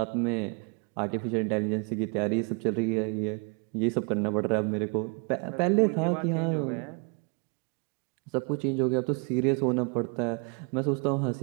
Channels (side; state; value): left; quieter; 34.3 dB